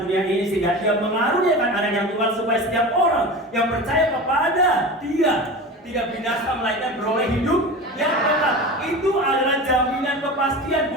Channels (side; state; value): both; normal; correlation 0.31